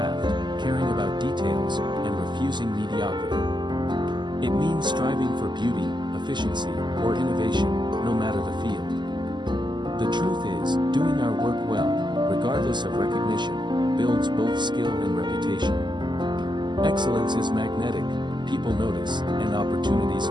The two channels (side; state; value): left; late; 0.21 ms